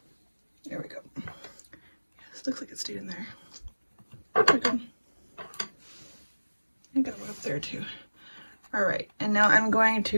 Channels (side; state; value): both; inverted; correlation -1.00